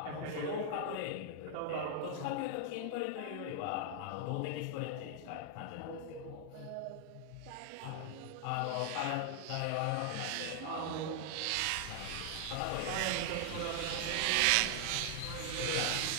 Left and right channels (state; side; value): different; both; correlation 0.00